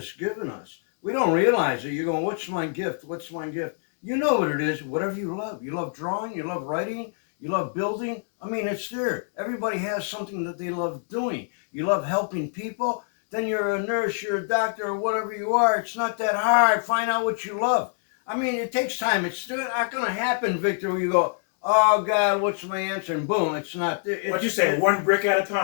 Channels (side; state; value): right; silent; digital silence